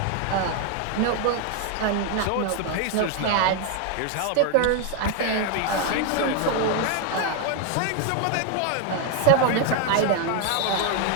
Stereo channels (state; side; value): different; both; correlation 0.01